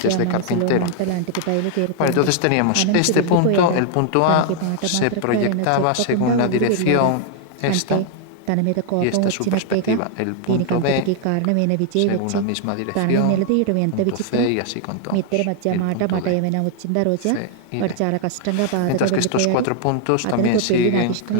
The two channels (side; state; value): both; different; correlation 0.00